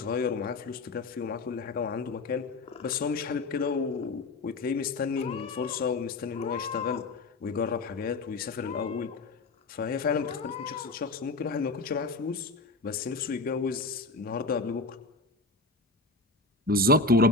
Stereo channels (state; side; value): quieter; right; 3.3 dB